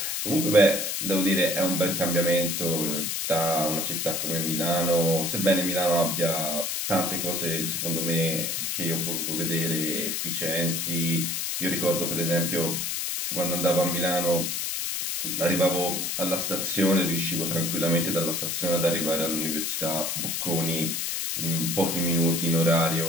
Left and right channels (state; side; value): noise; left; hiss, 1 dB below the sound